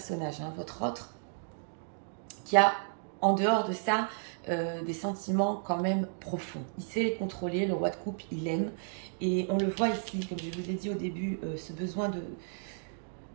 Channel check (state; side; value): silent; left; digital silence